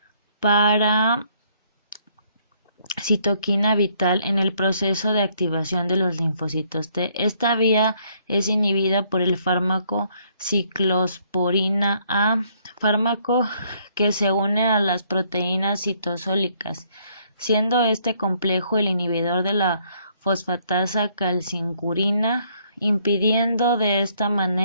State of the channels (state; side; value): inverted; both; correlation -0.68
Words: para citoquina vital en el proceso de activación de los linfocitos T. Esta vía es inhibida por el fármaco ciclosporina A, fármaco que se une a las proteínas citosólicas, siendo este complejo el inhibidor de la fosfatasa calcincurina, impidiendo de esta